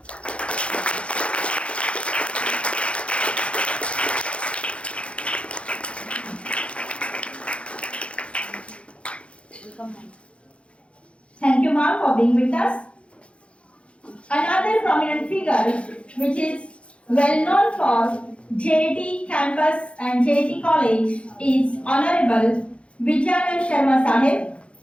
Thank you, ma'am, for being with us. Another prominent figure, which is well known for JIT campus and JIT college, is Honorable Vijayanand Sharma Sahib.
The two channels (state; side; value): late; right; 0.060 ms